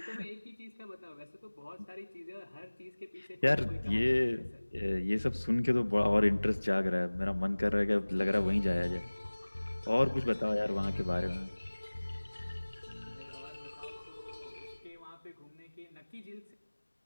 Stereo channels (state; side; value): inverted; both; correlation -1.00